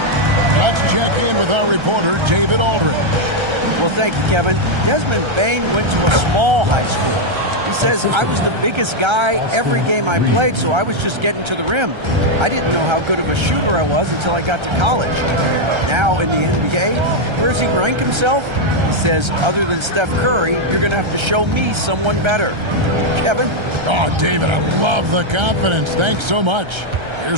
Let's check in with our reporter, David Aldridge. Well, thank you, Kevin. Desmond Bane went to a small high school. He says, I was the biggest guy every game I played, so I was just getting to the rim. I didn't know how good of a shooter I was until I got to college. Now in the NBA, where does he rank himself? He says, other than Steph Curry, you're going to have to show me someone better. Kevin? Oh, David, I love the confidence. Thanks so much.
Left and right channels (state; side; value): late; left; 1.3 ms